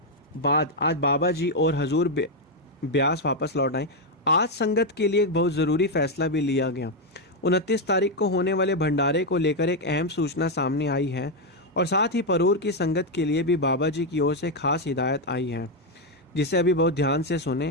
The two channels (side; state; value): both; normal; correlation 0.03